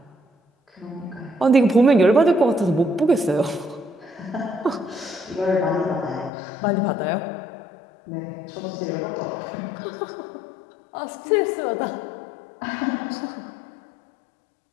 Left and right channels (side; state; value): right; drops out; at 6.3 s